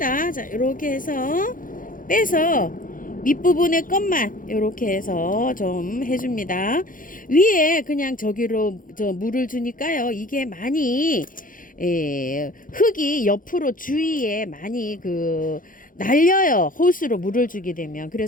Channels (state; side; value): late; right; 0.40 ms